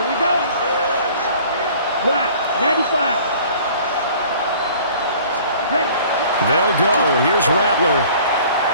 we go. Black, 95. Ready. They'll go. Here's Rattler.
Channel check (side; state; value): both; inverted; correlation -0.50